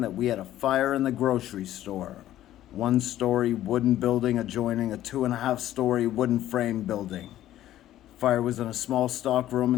that we had a fire in the grocery store. 1-story wooden building adjoining a 2.5-story wooden frame building. Fire was in a small stock room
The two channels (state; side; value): quieter; right; 13.2 dB